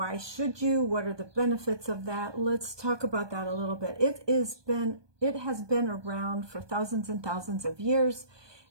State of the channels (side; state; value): left; late; 1.2 ms